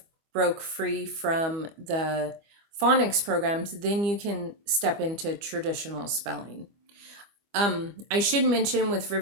broke free from the phonics programs, then you can step into traditional spelling. I should mention with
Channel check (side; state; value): left; late; 25 ms